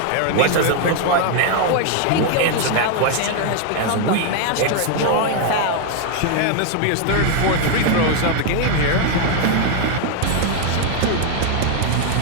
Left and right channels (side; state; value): both; different; correlation 0.00